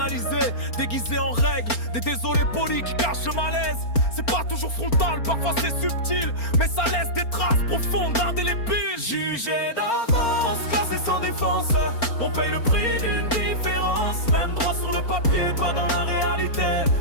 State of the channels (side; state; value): right; late; 4.3 ms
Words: déguisée en règle. Des désolés polis qui cachent le malaise. C'est pas toujours frontal, parfois c'est subtil, mais ça laisse des traces profondes, indélébiles. Jugé d'avance, classé sans défense, on paye le prix d'une différence. Même droit sur le papier, pas dans la réalité.